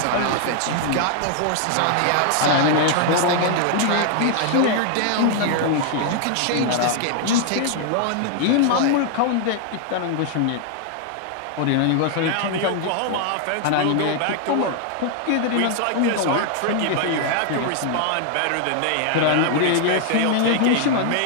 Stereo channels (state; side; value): different; both; correlation 0.00